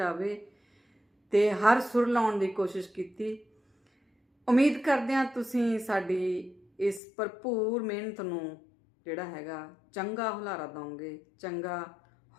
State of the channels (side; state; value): right; drops out; at 7.0 s